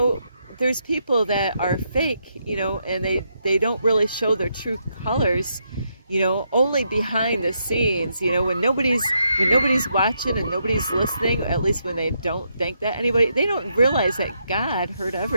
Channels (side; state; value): both; inverted; correlation -0.79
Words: there's people that are fake, and they don't really show their true colors, only behind the scenes, when nobody's watching and nobody's listening, at least when they don't think that anybody, they don't realize that God heard